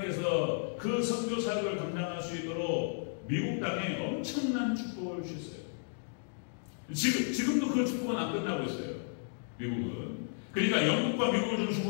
그 선교 사역을 감당할 수 있도록 미국 땅에 엄청난 축복을 주셨어요. 지금도 그 축복은 안 끝나고 있어요. 미국은. 그러니까 영국과 미국을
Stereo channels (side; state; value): right; silent; digital silence